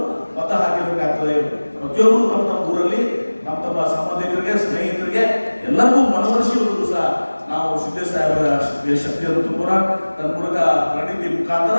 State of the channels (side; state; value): both; inverted; correlation -1.00